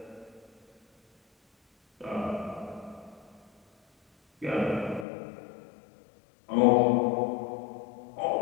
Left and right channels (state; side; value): drops out; right; at 5.1 s